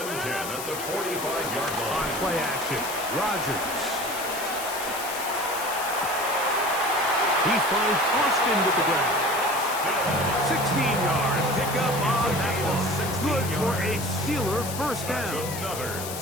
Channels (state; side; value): noise; left; hiss, 8 dB below the sound